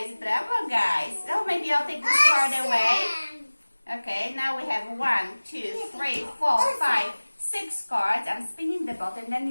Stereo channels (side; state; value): both; inverted; correlation -1.00